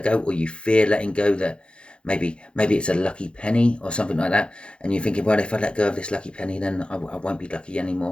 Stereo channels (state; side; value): late; right; 0.056 ms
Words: go, or you fear letting go. That maybe it's a lucky penny or something like that, and you're thinking, well, if I let go of this lucky penny, then I won't be lucky